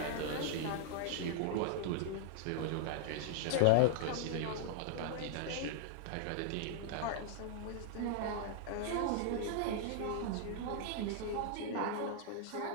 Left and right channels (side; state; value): both; different; correlation -0.01